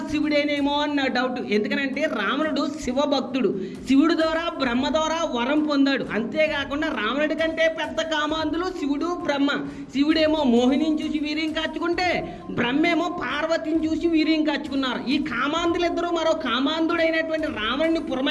శివుడేనేమో అన్న డౌట్. ఎందుకనంటే రావణుడు శివ భక్తుడు, శివుడు ద్వారా బ్రహ్మ ద్వారా వరం పొందాడు. అంతేకాకుండా రావణుడి కంటే పెద్ద కామాంధులు శివుడు బ్రహ్మ. శివుడేమో మోహినిని చూసి వీర్యం కాచుకుంటే బ్రహ్మేమో పార్వతిని చూసి వీర్యం కాచుకున్నారు. ఈ కామాంధులిద్దరూ మరో కామాంధుడైనటువంటి రావణుని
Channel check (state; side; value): identical; both; correlation 1.00